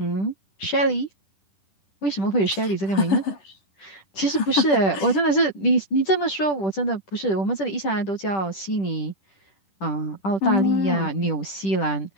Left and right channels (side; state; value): right; late; 10 ms